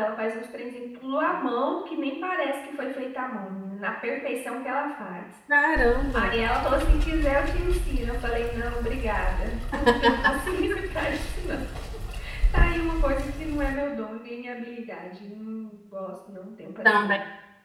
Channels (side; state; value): both; identical; correlation 1.00